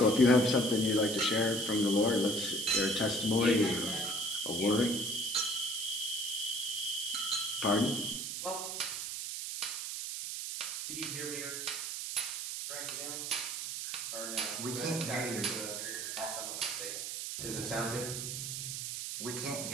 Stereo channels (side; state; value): right; noise; hiss, 4 dB below the sound